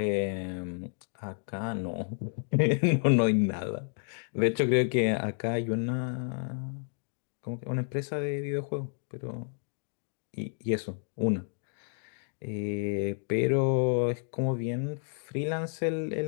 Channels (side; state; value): right; silent; digital silence